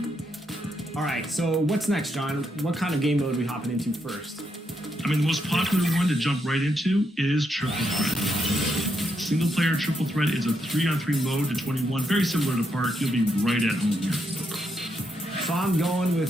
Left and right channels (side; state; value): both; normal; correlation 0.80